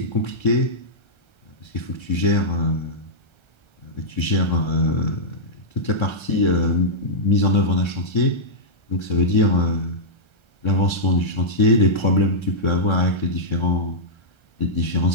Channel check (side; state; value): right; late; 1.3 ms